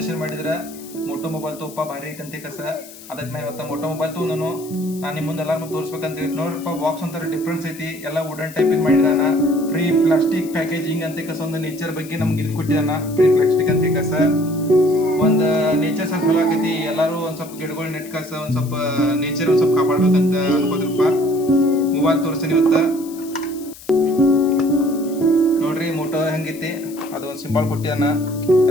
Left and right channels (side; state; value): left; noise; hiss, 18 dB below the sound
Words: ಮಾಡಿದ್ರ ಮೋಟೋ ಮೊಬೈಲ್ ತೋಪ ಭಾರಿ ಐತಿ ಅಂತ ಕಸ. ಅದಕ್ಕೆ ನಾ ಇವತ್ತ ಮೋಟೋ ಮೊಬೈಲ್ ತೊಗೊಂಡನು. ನಾನು ನಿಮ್ಮ ಮುಂದೆ ಎಲ್ಲಾರು ತೋರಿಸ್ಬೇಕಂತ ನೋಡ್ರಪ್ಪ. ಬಾಕ್ಸ್ ಒಂಥರ ಡಿಫ್ರೆನ್ಸ್ ಐತಿ, ಎಲ್ಲ ವುಡನ್ ಟೈಪ್ ಇದು ಮಾಡಿದಾನ. ಫ್ರೀ ಪ್ಲಾಸ್ಟಿಕ್ ಪ್ಯಾಕೇಜಿಂಗ್ ಅಂತ ಕಸ. ಒಂದು ನೇಚರ್ ಬಗ್ಗೆ ನಮ್ಗೆ ಇದು ಕೊಟ್ಟಿದಾನ, ಫ್ರೀ ಪ್ಲಾಸ್ಟಿಕ್ ಅಂತ ಕಸ. ಒಂದು ನೇಚರ್ ಸ್ವಲ್ಪ ಚಲೋ ಆಕೈತಿ. ಎಲ್ಲಾರು ಒಂದ್ ಸ್ವಲ್ಪ ಗಿಡಗಳು ನೆಟ್ ಕಸ, ಒಂದ್ ಸ್ವಲ್ಪ ನೇಚರ್ ಒಂದ್ ಸ್ವಲ್ಪ ಕಾಪಾಡ್ಬೇಕಂತ ಅನ್ಕೋದ್ರಪ್ಪ. ಮೊಬೈಲ್ ತೋರಿಸ್ತೀನಿ ಇವತ್ತ. ನೋಡ್ರಿ ಮೋಟೋ ಹೆಂಗೈತಿ. ಅದು ಒಂದು ಸಿಂಬಲ್ ಕೊಟ್ಟಿದಾನ,